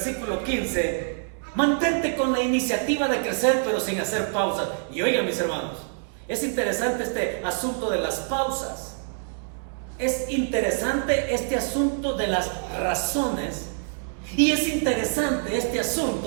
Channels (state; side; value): silent; left; digital silence